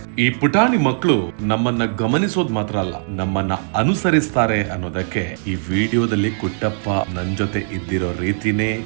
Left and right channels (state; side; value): silent; left; 66 dB below the other